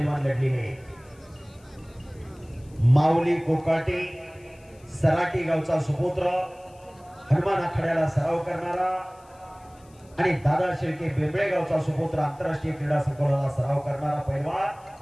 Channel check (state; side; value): noise; left; hiss, 30 dB below the sound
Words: लढलेले आहेत. माऊली कोकाटे सराटी गावचा सुपुत्र, हनुमान आखाड्याला सराव करणारा आणि दादा शेळके बेंबळे गावचा सुपुत्र, आंतरराष्ट्रीय क्रीडा संकुलाला सराव करणारा पैलवान,